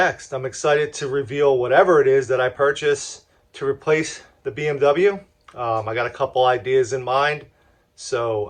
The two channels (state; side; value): identical; both; correlation 1.00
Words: I'm excited to reveal whatever it is that I purchase to replace the BMW. I got a couple ideas in mind. So